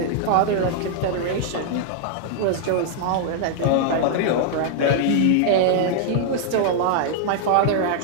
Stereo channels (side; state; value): both; different; correlation -0.01